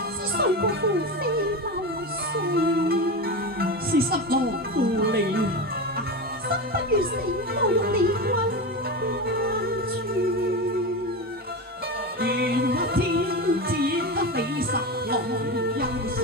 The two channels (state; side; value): normal; both; correlation 0.21